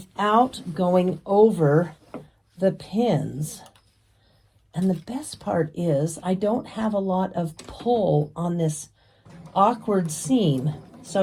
going over the pins. And the best part is I don't have a lot of pull on this awkward seam.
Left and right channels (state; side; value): identical; both; correlation 1.00